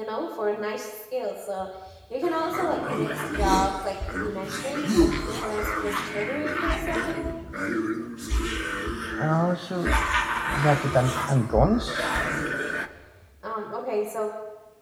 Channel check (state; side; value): identical; both; correlation 1.00